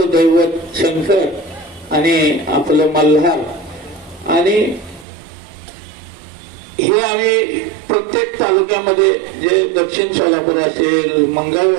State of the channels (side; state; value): left; drops out; at 5.1 s